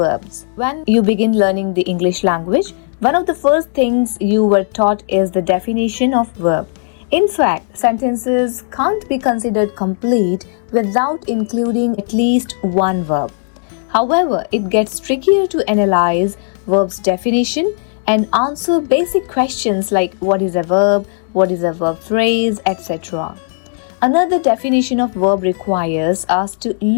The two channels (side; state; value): right; silent; digital silence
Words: When you begin learning the English language, one of the first things you were taught is the definition of verb. In fact, sentences can't be considered complete without including at least one verb. However, it gets trickier to analyze verb's definition and answer basic questions like what is a verb, what is a verb phrase, etc. Another definition of verb requires us to